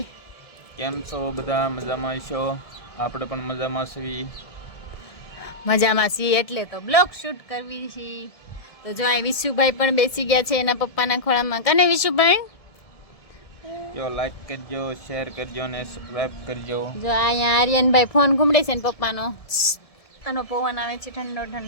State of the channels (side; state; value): right; late; 1.7 ms